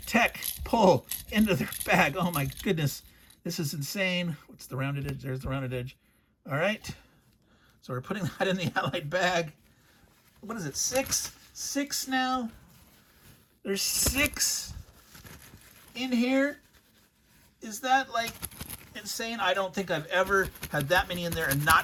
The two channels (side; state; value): both; identical; correlation 1.00